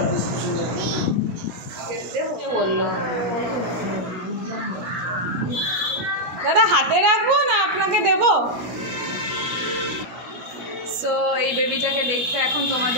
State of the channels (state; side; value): late; left; 17 ms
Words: বললো দাদা হাতে রাখবো না আপনাকে দেবো? সো এই বেবিটাকে দেখতে এখন